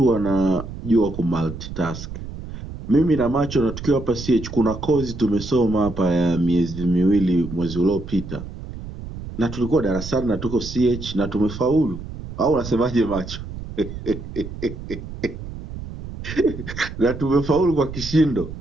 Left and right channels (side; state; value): right; noise; rumble, 10 dB below the sound